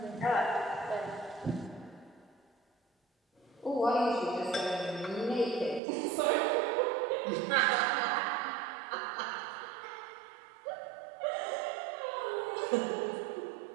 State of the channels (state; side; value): drops out; left; at 5.8 s